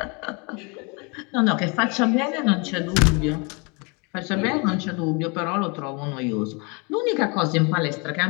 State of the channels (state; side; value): quieter; right; 31.0 dB